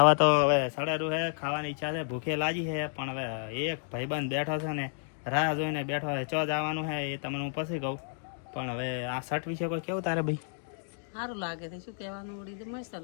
તો હવે સડારું છે, ખાવાની ઈચ્છા છે, ભૂખે લાગી છે. પણ હવે એક ભાઈબંધ બેઠો છે ને રાહ જોઈને બેઠો છે, ચો જવાનું છે એ તમને હું પછી કહું. પણ હવે આ શર્ટ વિશે કોઈ કેવું તારે ભાઈ? સારું લાગે છે, શું કહેવાનું, ઉડી મસ્ત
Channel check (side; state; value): right; silent; digital silence